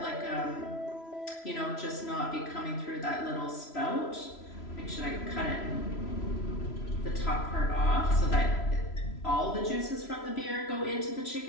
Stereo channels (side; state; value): right; late; 3.0 ms